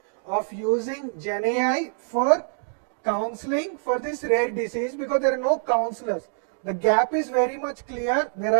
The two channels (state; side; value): silent; left; digital silence